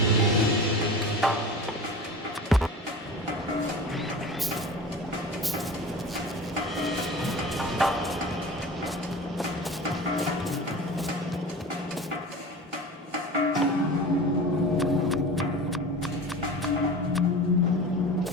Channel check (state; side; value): normal; both; correlation 0.35